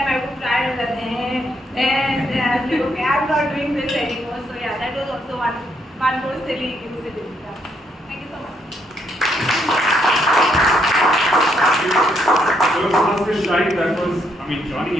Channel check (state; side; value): normal; both; correlation 0.74